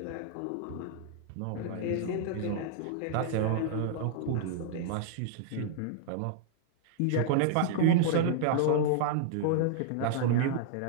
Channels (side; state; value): both; different; correlation -0.01